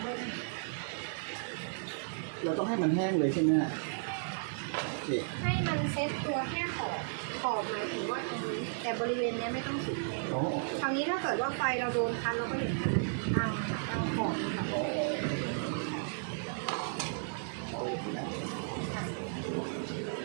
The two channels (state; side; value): silent; left; digital silence